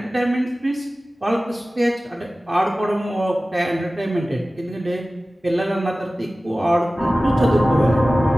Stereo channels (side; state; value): both; normal; correlation 0.97